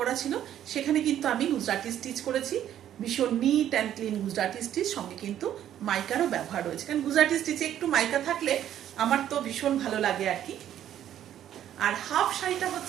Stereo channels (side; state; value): left; quieter; 11.0 dB